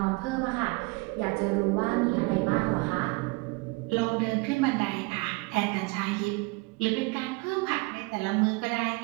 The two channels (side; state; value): left; quieter; 26.6 dB